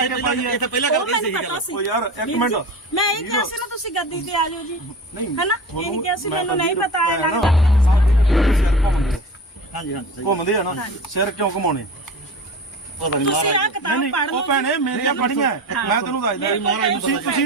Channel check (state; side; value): normal; both; correlation 0.33